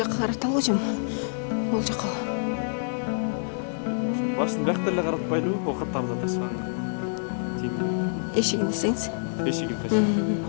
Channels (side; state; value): right; silent; digital silence